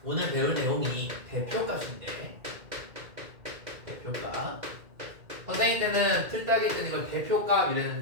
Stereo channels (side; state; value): left; late; 2.2 ms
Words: 오늘 배울 내용이 대표값인데, 대표값. 선생님 때는 틀딱이 때는 이걸 대표값